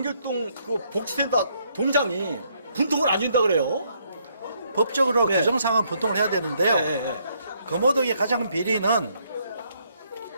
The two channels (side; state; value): both; inverted; correlation -0.71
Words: 복지센터 동장이 분통을 안 준다 그래요. 법적으로 규정상은 분통을 해야 되는데요. 금호동의 가장 큰 비리는